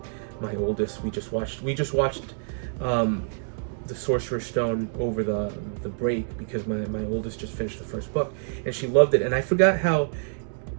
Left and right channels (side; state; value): left; silent; digital silence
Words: My oldest, we just watched the Sorcerer's Stone over the break because my oldest just finished the first book and she loved it. And I forgot how